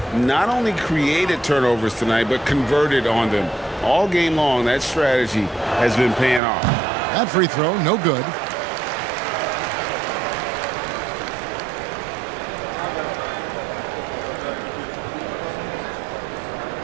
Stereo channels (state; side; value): drops out; left; at 6.4 s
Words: not only created turnovers tonight, but converted on them. All game long, that strategy has been paying off. That free throw, no good.